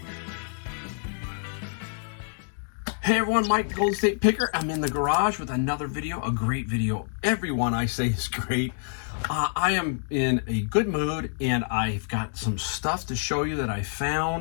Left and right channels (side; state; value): right; silent; digital silence